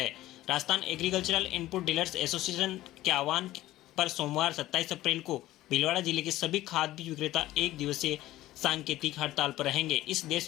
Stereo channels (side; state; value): right; quieter; 15.7 dB